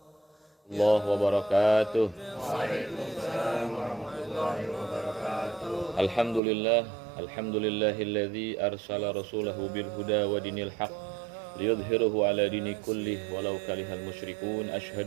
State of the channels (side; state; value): left; drops out; at 6.4 s